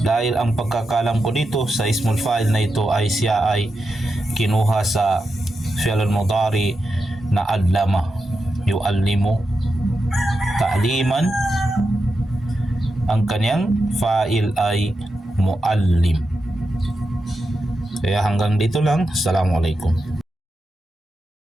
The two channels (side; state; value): both; normal; correlation 0.88